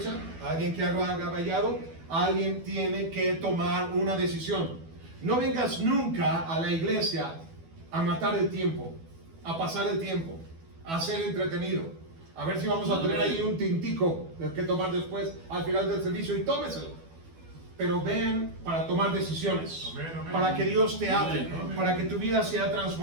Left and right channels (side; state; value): left; late; 12 ms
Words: ¿Alguien que haga vallado? alguien tiene que tomar una decisión. No vengas nunca a la iglesia a matar el tiempo, a pasar el tiempo, a ser entretenido, a ver si vamos a tener ahí un tintico que tomar después al final del servicio, y tómeselo. Pero ven para tomar decisiones, para que Dios te hable, para que tu vida sea